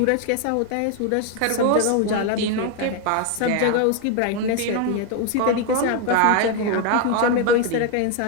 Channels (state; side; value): different; both; correlation 0.01